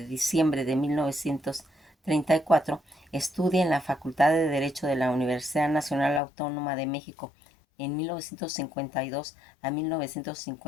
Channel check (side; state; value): right; drops out; at 6.2 s